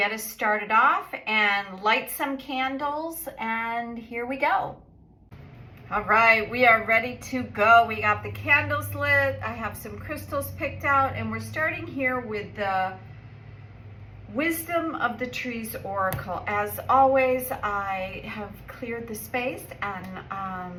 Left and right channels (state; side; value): identical; both; correlation 1.00